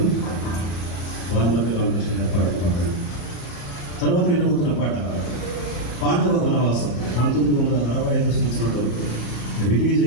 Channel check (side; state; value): right; late; 34 ms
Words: వానమతి రామకృష్ణ గారు పాడుతున్నారు. తర్వాత వినబోతున్న పాట పాండవ వనవాసం 1965 సంవత్సరంలో రిలీజ్